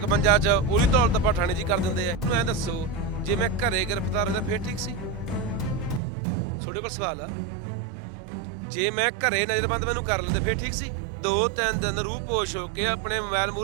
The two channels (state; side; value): drops out; left; at 6.0 s